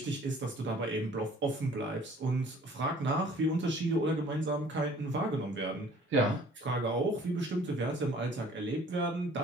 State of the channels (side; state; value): both; normal; correlation 0.53